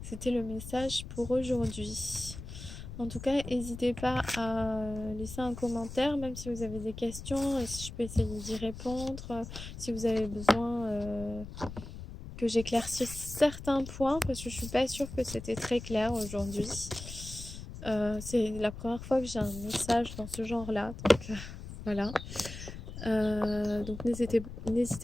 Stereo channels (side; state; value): left; noise; rumble, 11 dB below the sound